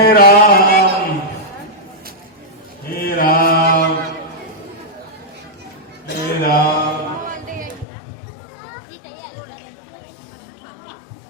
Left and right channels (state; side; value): drops out; right; at 7.9 s